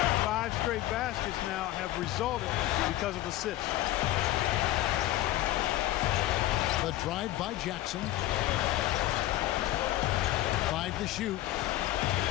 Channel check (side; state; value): right; quieter; 15.3 dB